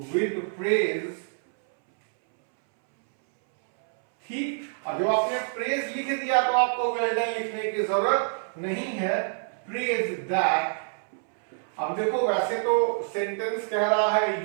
with praise, ठीक। अब जब आपने प्रेज लिख दिया तो आपको वेल डन लिखने की जरूरत नहीं है, प्रेज दैट। अब देखो, वैसे तो सेंटेंस कह रहा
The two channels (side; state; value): left; silent; 61 dB below the other